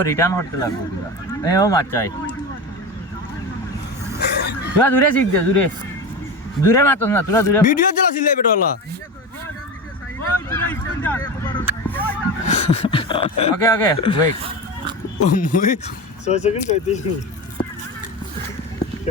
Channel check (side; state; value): both; normal; correlation 0.24